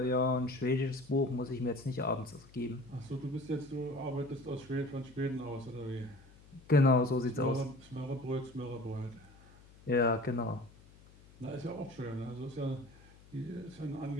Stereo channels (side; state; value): left; noise; hum, 23 dB below the sound